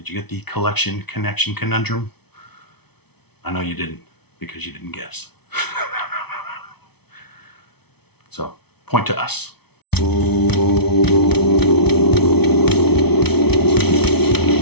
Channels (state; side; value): late; right; 0.98 ms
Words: you get the collection connection conundrum? I know you didn't, because you didn't guess. So, point to us.